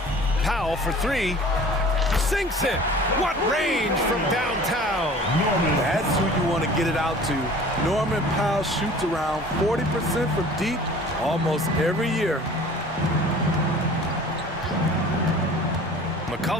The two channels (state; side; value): normal; both; correlation 0.45